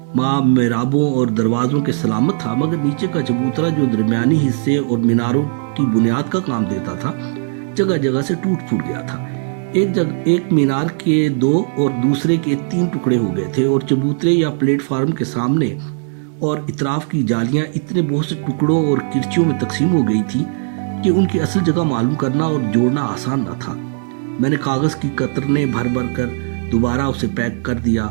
माँ मेराबों और दरवाज़ों के सलामत था, मगर नीचे का चबूतरा जो दरमियानी हिस्से और मीनारों की बुनियाद का काम देता था, जगह जगह से टूट फूट गया था। एक मीनार के 2 और दूसरे के 3 टुकड़े हो गए थे और चबूतरे या प्लेटफार्म के सामने और इतराफ की जालियां इतने बहुत से टुकड़ों और किरचियों में तकसीम हो गई थी कि उनकी असल जगह मालूम करना और जोड़ना आसान न था। मैंने कागज़ की कतरने भर भर कर दोबारा उसे पैक कर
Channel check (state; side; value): silent; left; 68 dB below the other